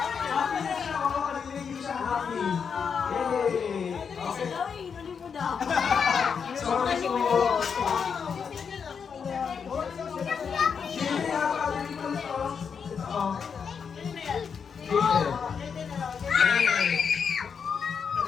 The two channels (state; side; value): quieter; right; 6.4 dB